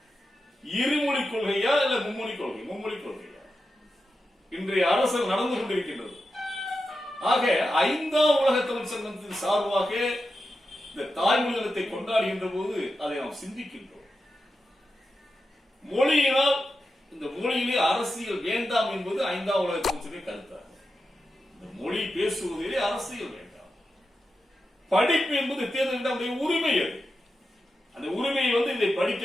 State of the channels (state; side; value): normal; both; correlation 0.90